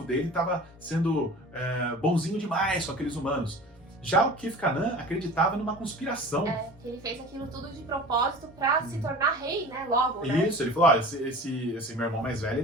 dele estava sendo bonzinho demais com aqueles humanos. Já o Kith-Kanan acreditava numa conspiração. Que ele fez aquilo tudo de propósito pra se tornar rei, né? Logo, né? Isso, ele falou, olha, esse meu irmão mais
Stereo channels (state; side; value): normal; both; correlation 0.39